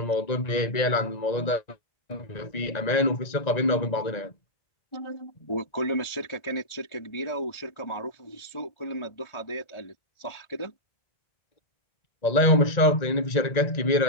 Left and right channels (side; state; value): right; late; 1.9 ms